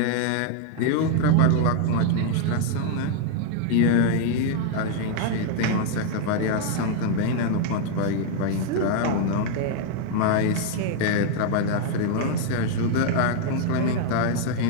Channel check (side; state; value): both; different; correlation 0.00